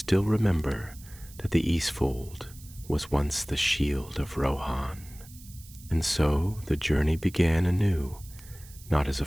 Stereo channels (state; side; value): noise; right; hiss, 20 dB below the sound